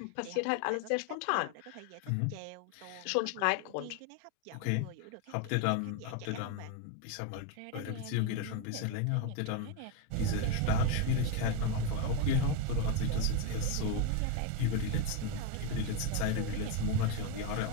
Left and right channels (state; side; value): different; both; correlation 0.02